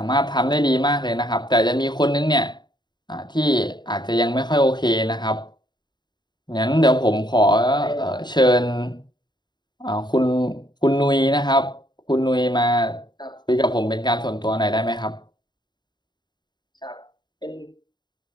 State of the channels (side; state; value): right; late; 0.21 ms